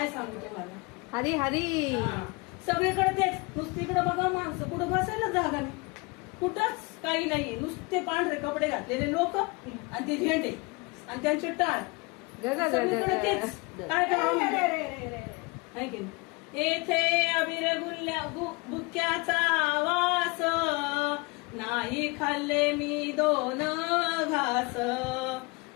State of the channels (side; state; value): right; quieter; 26.8 dB